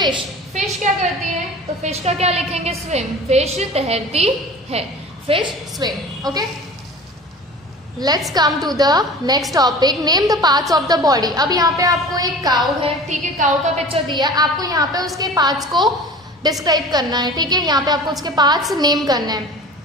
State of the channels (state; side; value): normal; both; correlation 0.39